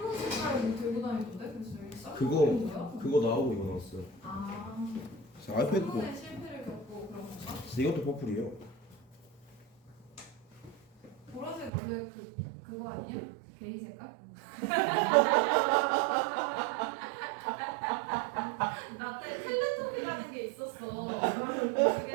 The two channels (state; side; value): drops out; left; at 11.7 s